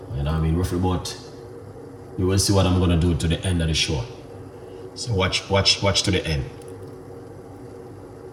You know what I mean? Roughly about, you will see what I'm gonna do to the end of the show. So watch to the end.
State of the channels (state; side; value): identical; both; correlation 1.00